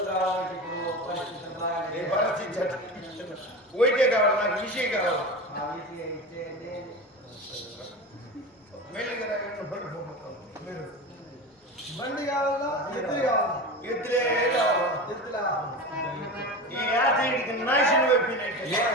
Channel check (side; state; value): both; normal; correlation 0.27